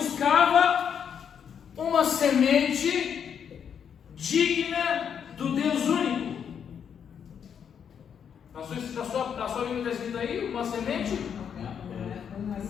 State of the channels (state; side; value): quieter; right; 7.8 dB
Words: uma semente digna do Deus único. Na sua Bíblia está escrito aí, uma semente? Uma